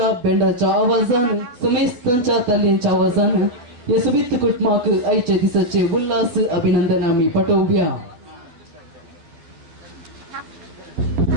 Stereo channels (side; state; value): left; late; 12 ms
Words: बेंडाच्या आवाजान समेस्तांच्या ताल्यांच्या आवाजान या सुबीत कुटुंबाक आयच्या दिसाचे उल्हास अभिनंदन आम्ही पाठवूया.